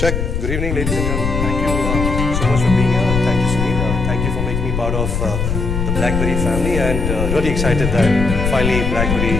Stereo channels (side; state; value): left; noise; rumble, 2 dB below the sound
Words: Good evening, ladies and gentlemen. Thank you so much for being here. Thank you, Sunil. Thank you for making me part of the BlackBerry family, and really excited that finally